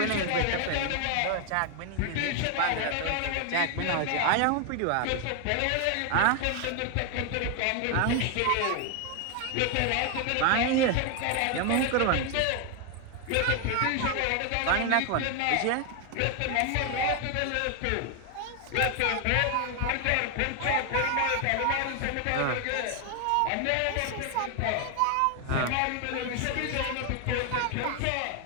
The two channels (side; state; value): both; different; correlation 0.01